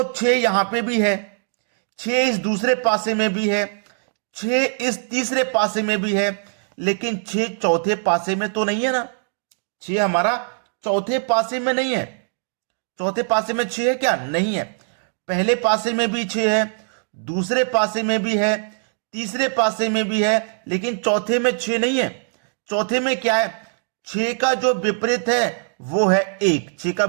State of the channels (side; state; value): left; silent; digital silence